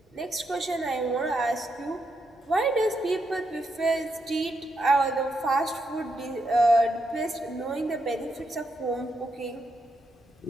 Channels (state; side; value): normal; both; correlation 0.81